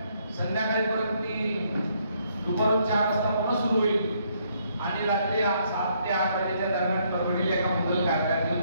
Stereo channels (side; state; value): both; inverted; correlation -0.71